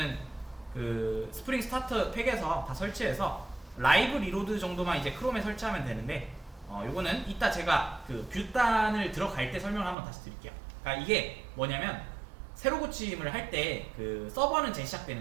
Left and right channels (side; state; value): left; drops out; at 10.0 s